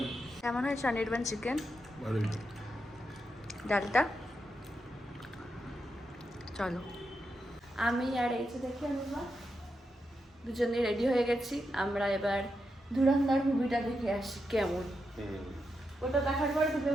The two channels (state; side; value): normal; both; correlation 0.85